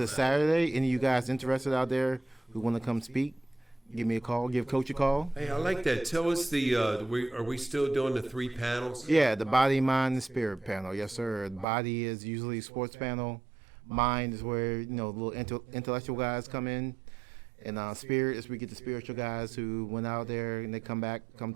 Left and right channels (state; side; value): drops out; left; at 11.7 s